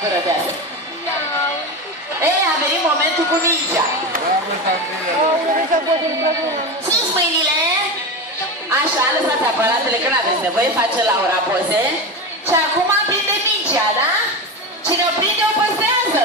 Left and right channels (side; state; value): both; normal; correlation 0.21